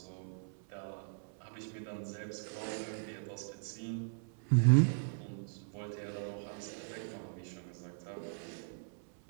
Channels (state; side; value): silent; left; 52 dB below the other